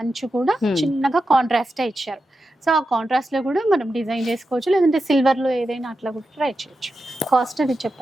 అంచు కూడా చిన్నగా కాంట్రాస్ట్ ఇచ్చారు. సో ఆ కాంట్రాస్ట్ లో కూడా మనం డిజైన్ చేసుకోవచ్చు, లేదంటే సిల్వర్ లో ఏదైనా అట్లా కూడా ట్రై చేయొచ్చు. కాస్ట్ అది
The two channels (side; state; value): both; normal; correlation 0.90